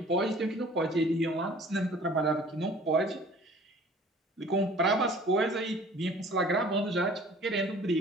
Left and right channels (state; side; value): normal; both; correlation 0.49